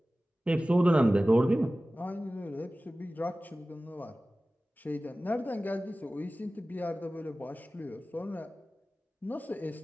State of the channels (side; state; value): both; normal; correlation 0.97